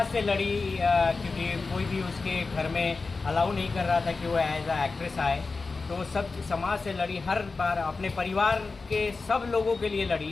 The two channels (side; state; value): right; quieter; 4.1 dB